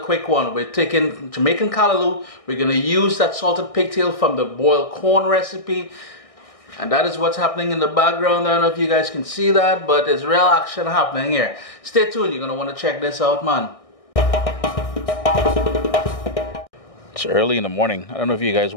one. We're taking Jamaican Callaloo. We're going to use that salted pigtail from the boiled corn recipe. And that is what's happening in the background. I don't know if you guys can see that, but there's real action happening here. Stay tuned. You're going to want to check this out, man. It's early in the morning. I don't know if you guys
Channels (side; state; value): right; late; 1.6 ms